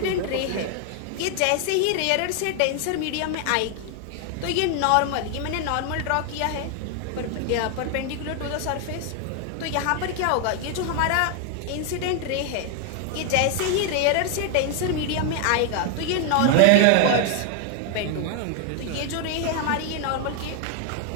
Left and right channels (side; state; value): both; different; correlation 0.00